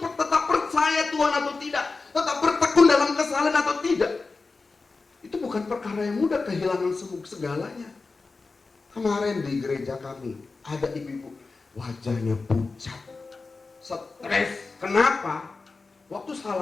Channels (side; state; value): right; quieter; 4.0 dB